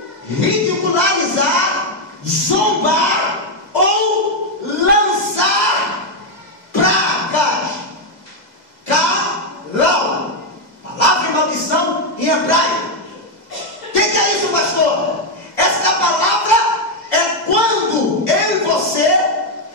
ridicularizar, zombar ou lançar pragas. Calau, palavra de maldição em hebraico. O que é isso, pastor? Esta palavra é quando eu e você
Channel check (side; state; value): right; late; 2.0 ms